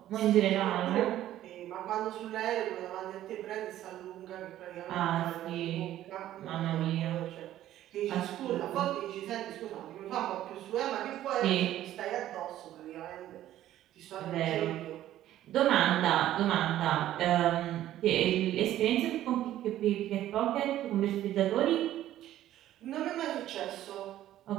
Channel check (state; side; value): quieter; left; 13.0 dB